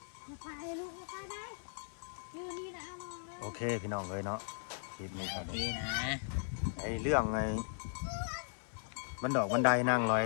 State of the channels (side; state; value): right; silent; 53 dB below the other